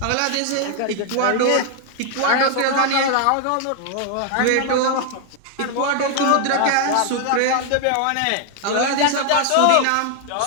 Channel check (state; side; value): different; both; correlation 0.00